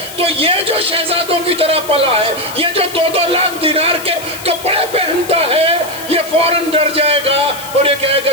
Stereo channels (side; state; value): left; noise; hiss, 14 dB below the sound